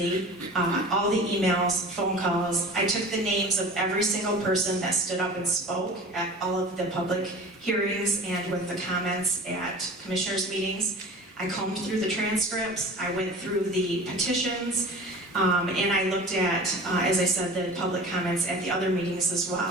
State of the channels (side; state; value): both; normal; correlation 0.38